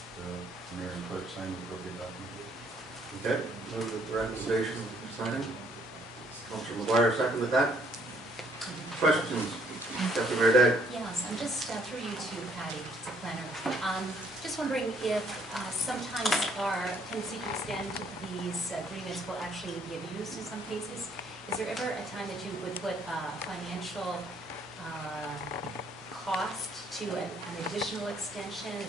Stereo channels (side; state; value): both; normal; correlation 0.65